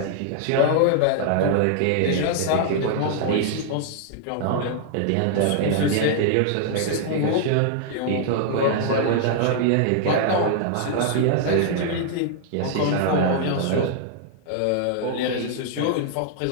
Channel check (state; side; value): different; both; correlation -0.01